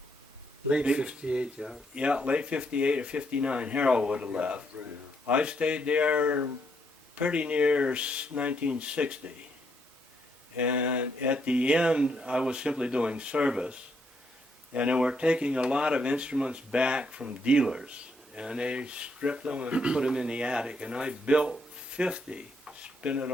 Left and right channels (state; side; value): normal; both; correlation 0.75